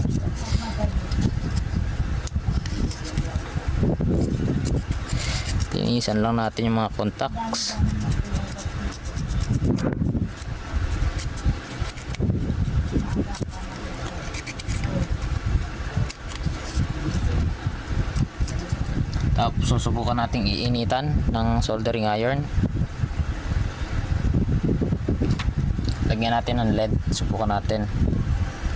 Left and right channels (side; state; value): both; identical; correlation 1.00